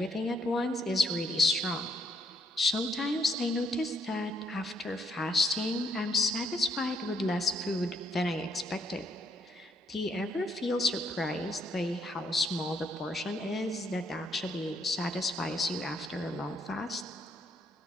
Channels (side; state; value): both; normal; correlation 0.72